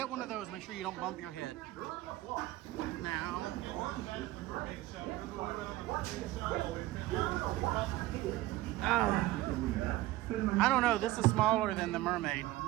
one of those, make sure you don't bump your head. Now, I don't know. This is smaller than the Mermaid.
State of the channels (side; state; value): left; quieter; 16.7 dB